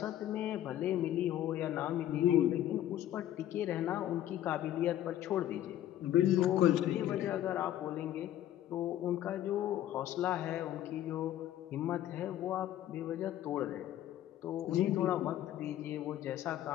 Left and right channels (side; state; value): right; quieter; 12.4 dB